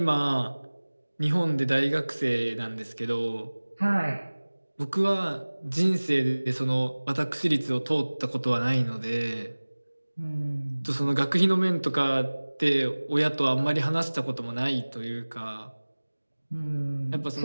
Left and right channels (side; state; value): both; inverted; correlation -1.00